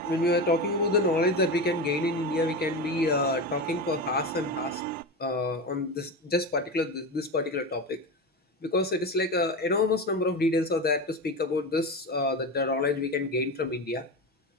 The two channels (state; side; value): normal; both; correlation 0.21